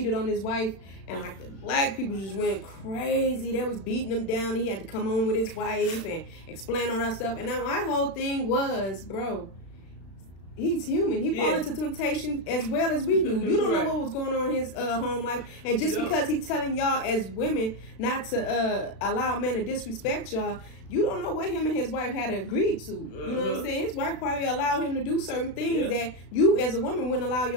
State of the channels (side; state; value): right; late; 36 ms